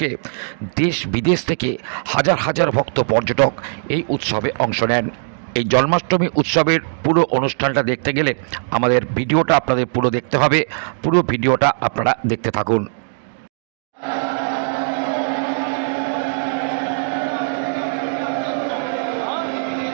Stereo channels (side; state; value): left; silent; digital silence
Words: দেশ বিদেশ থেকে হাজার হাজার ভক্ত পর্যটক এই উৎসবে অংশ নেন। এই জন্মাষ্টমী উৎসবের পুরো অনুষ্ঠানটা দেখতে গেলে আমাদের ভিডিওটা আপনাদের পুরো দেখতে হবে। পুরো ভিডিওটা আপনারা দেখতে থাকুন।